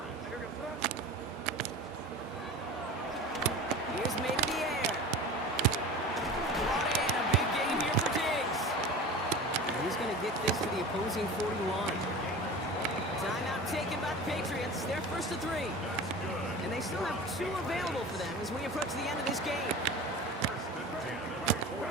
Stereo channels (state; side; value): normal; both; correlation 0.34